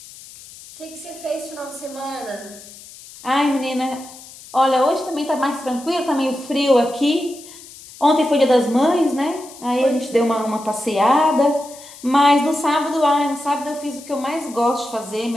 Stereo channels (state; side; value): noise; left; hiss, 18 dB below the sound